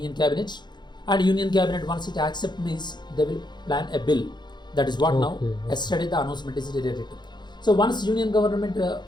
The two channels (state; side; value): late; right; 0.21 ms